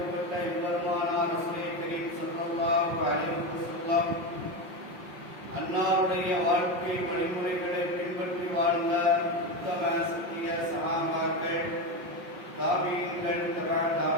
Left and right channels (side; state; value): left; late; 5.5 ms